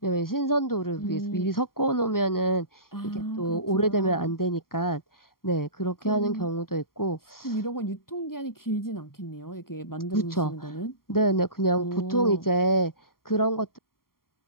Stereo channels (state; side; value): late; right; 0.93 ms